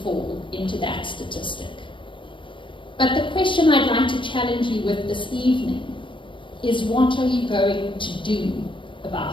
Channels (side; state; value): right; late; 0.24 ms